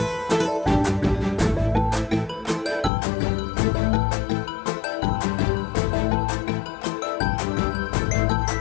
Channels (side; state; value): right; drops out; at 2.9 s